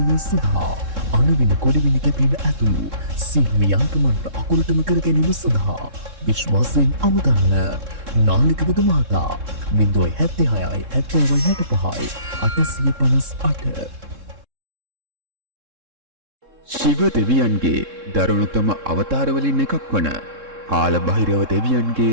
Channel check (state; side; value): late; left; 3.7 ms